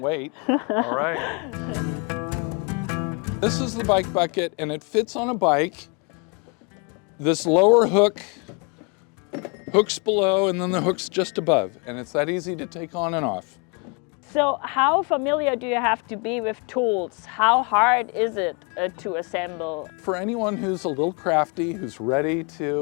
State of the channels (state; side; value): quieter; right; 33.8 dB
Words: All right. This is the bike bucket and it fits on a bike. This lower hook hooks below and then the hook's just above, and it's that easy to take on and off. So how familiar do you have to be with tools? How hard is it to assemble? For anyone who's a little crafty, who's ready